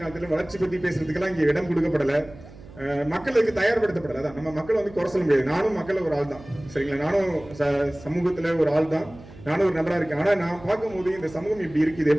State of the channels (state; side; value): noise; right; hum, 19 dB below the sound